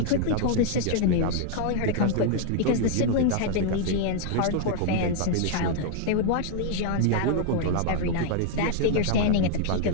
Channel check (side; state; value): both; different; correlation 0.00